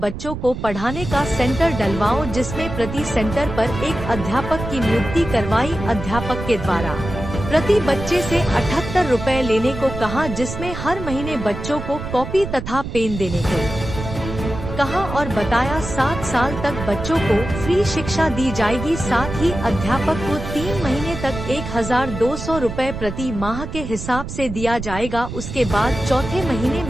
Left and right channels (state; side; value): noise; right; rumble, 8 dB below the sound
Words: को पढ़ाने का सेंटर डलवाओ, जिसमें प्रति सेंटर पर एक अध्यापक की नियुक्ति करवाई। अध्यापक के द्वारा प्रति बच्चे से 78 रुपए लेने को कहा, जिसमें हर महीने बच्चों को कॉपी तथा पेन देने को कहा और बताया 7 साल तक बच्चों को फ्री शिक्षा दी जाएगी। साथ ही अध्यापक को 3 महीने तक 1200 रुपए प्रति माह के हिसाब से दिया जाएगा। उसके बाद चौथे महीने